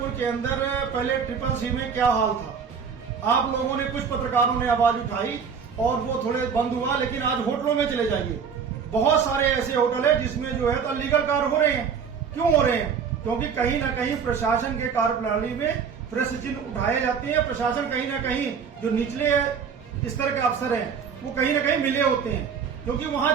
के अंदर पहले CCC में क्या हाल था। आप लोगों ने, कुछ पत्रकारों ने आवाज उठाई और वो थोड़े बंद हुआ, लेकिन आज होटलों में चले जाइए, बहुत सारे ऐसे होटल है जिसमें जो है तो अनलीगल कार्य हो रहे हैं। क्यों हो रहे हैं? क्योंकि कहीं ना कहीं प्रशासन के कार्यप्रणाली में प्रश्न चिन्ह उठाए जाते हैं। प्रशासन कहीं ना कहीं जो निचले इस तरह के अफसर हैं वो कहीं ना कहीं मिले होते हैं, क्योंकि वहां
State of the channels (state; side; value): quieter; left; 6.5 dB